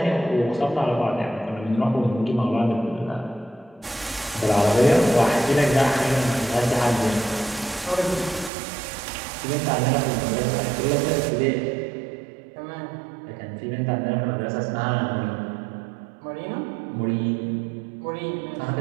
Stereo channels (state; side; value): drops out; left; at 8.5 s